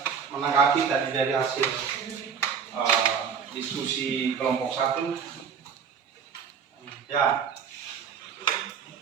menanggapi tadi dari hasil diskusi kelompok 1? Ya.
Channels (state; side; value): quieter; left; 6.8 dB